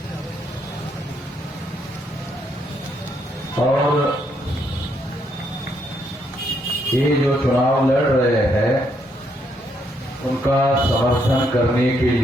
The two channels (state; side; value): normal; both; correlation 0.74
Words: और ये जो चुनाव लड़ रहे हैं उनका समर्थन करने के